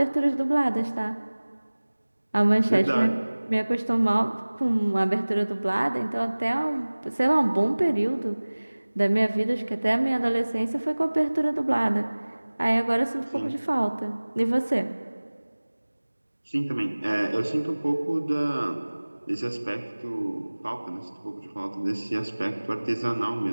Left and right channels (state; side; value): inverted; both; correlation -1.00